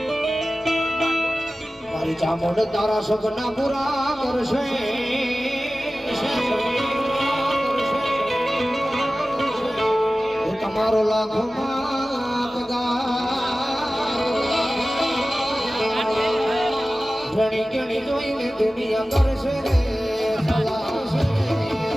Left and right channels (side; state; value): both; normal; correlation 0.96